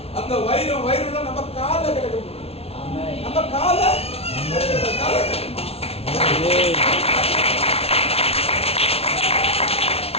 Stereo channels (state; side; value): late; right; 0.29 ms